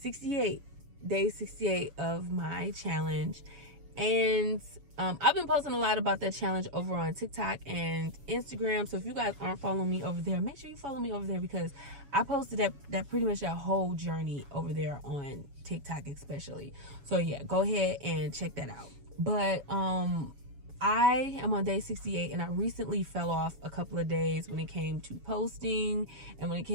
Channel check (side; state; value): left; late; 7.1 ms